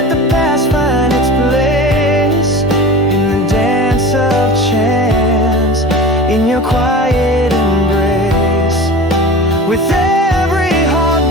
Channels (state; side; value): normal; both; correlation 0.35